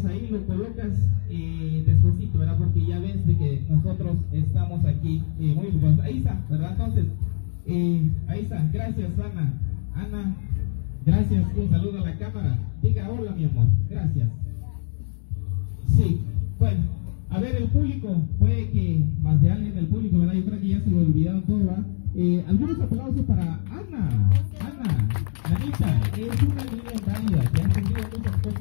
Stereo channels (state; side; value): silent; right; digital silence